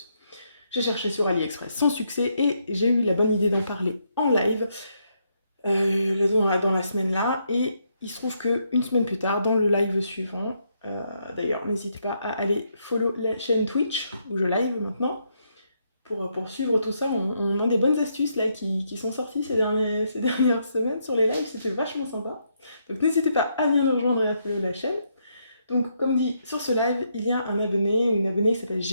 J'ai cherché sur AliExpress sans succès et j'ai eu la bonne idée d'en parler en live dans la semaine là et il se trouve que une semaine plus tard, dans le live suivant, d'ailleurs n'hésitez pas à aller follow la chaîne Twitch où je live maintenant, pour suivre tout ça, on a des bonnes astuces là qui sont sorties ces dernières semaines sur les lives, c'était vachement sympa. Donc n'hésitez pas à bien nous rejoindre et à follow la chaîne. Donc comme dit, sur ce live, il y a un abonné ou une abonnée qui s'appelle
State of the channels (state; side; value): inverted; both; correlation -0.77